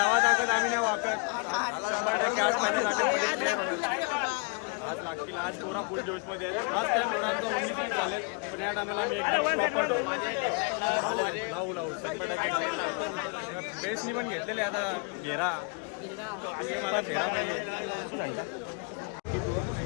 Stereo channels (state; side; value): quieter; right; 35.1 dB